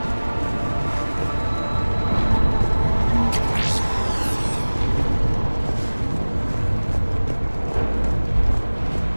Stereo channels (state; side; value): inverted; both; correlation -1.00